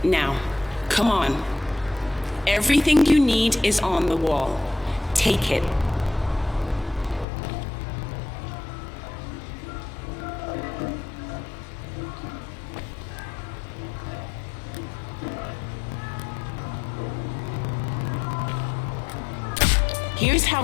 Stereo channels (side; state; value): right; drops out; at 7.2 s